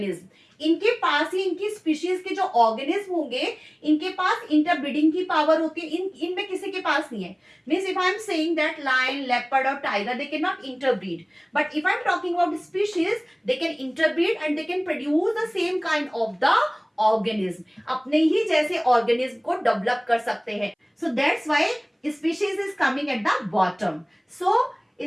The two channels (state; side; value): identical; both; correlation 1.00